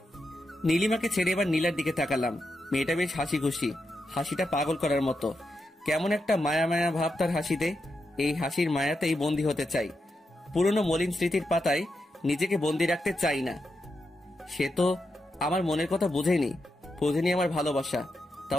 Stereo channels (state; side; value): normal; both; correlation 0.86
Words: নীলিমাকে ছেড়ে এবার নীলার দিকে তাকালাম। মেয়েটা বেশ হাসি খুশি, হাসিটা পাগল করার মতো। কেমন একটা মায়া মায়া ভাব তার হাসিতে। এই হাসির মায়াতেই বন্দি হতে চাই। পুরনো মলিন স্মৃতির পাতায় নিজেকে বন্দি রাখতে চাই না। সে তো আমার মনের কথা বুঝেনি আমার ভালোবাসা।